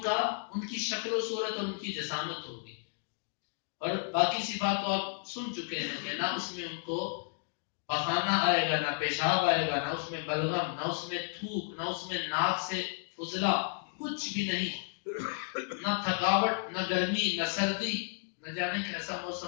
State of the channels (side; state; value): right; silent; 56 dB below the other